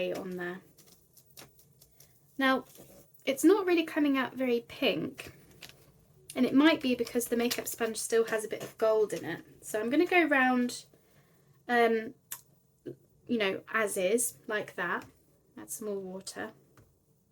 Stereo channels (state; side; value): identical; both; correlation 1.00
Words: on there. Now, it's not really coming out very pink. And it might be because the makeup sponge still has a bit of gold in it. So I'm going to go round, you know, as is, like that. Add some more water.